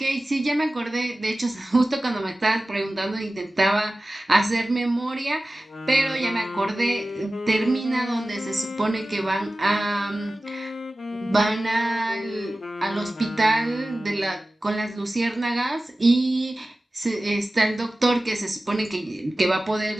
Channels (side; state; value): both; normal; correlation 0.96